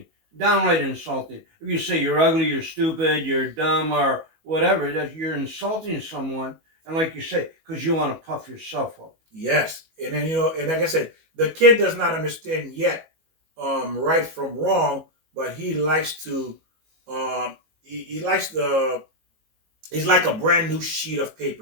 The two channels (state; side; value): late; left; 19 ms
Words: Downright insulting. If you say you're ugly, you're stupid, you're dumb, or whatever, that you're insulting someone. And like you say, because you want to puff yourself up. Yes. And then, you know, and like I said, the kid does not understand yet right from wrong, but he likes to, he likes the, he's like a brand new sheet of